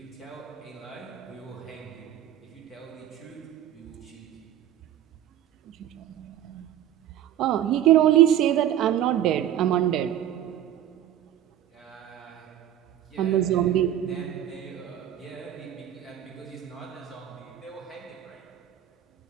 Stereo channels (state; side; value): quieter; left; 11.4 dB